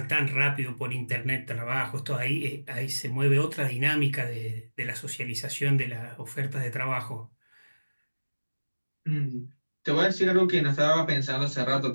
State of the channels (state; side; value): inverted; both; correlation -1.00